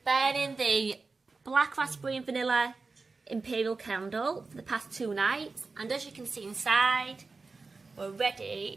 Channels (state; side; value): quieter; left; 4.1 dB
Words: burning the black raspberry and vanilla imperial candle for the past 2 nights, and as you can see inside, we're